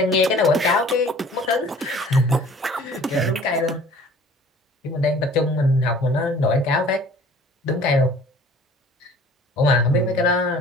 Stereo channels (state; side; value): normal; both; correlation 0.49